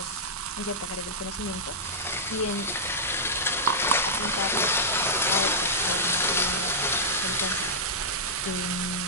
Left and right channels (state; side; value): normal; both; correlation -0.09